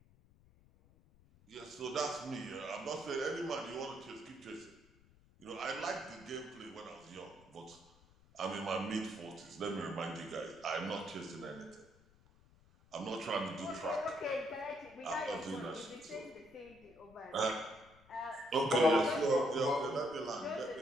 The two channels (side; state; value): left; noise; rumble, 27 dB below the sound